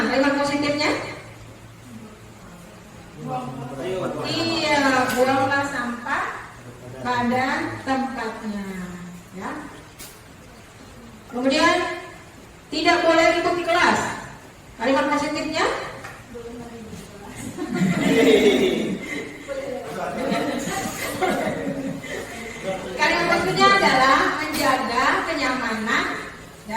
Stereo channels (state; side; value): identical; both; correlation 1.00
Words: Kalimat positifnya? Iya, buanglah sampah pada tempatnya. Ya. Kemudian tidak boleh ribut di kelas. Kalimat positifnya? Kalimat positifnya adalah menjaga kenyamanan